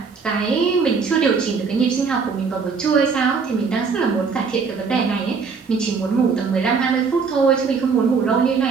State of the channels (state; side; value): quieter; left; 5.3 dB